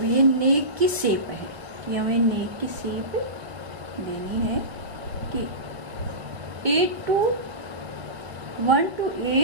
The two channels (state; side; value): late; left; 1.7 ms